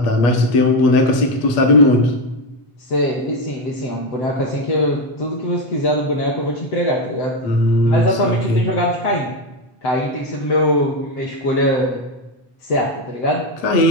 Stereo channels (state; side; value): late; right; 8.4 ms